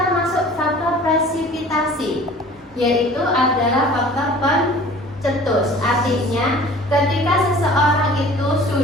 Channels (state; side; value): normal; both; correlation 0.46